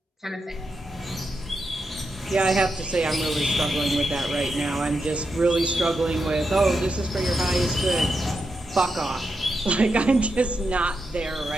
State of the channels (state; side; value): normal; both; correlation 0.86